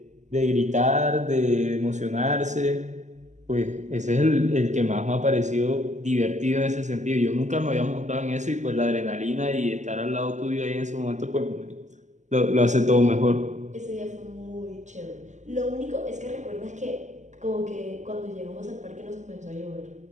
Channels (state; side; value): late; left; 0.34 ms